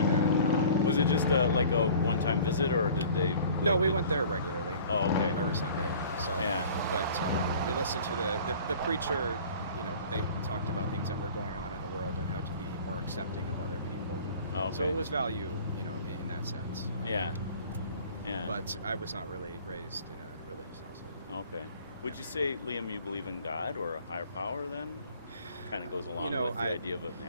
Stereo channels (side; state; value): both; inverted; correlation -0.47